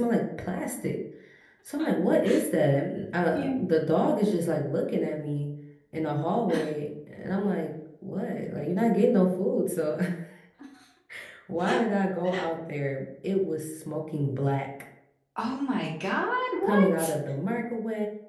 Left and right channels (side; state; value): both; identical; correlation 1.00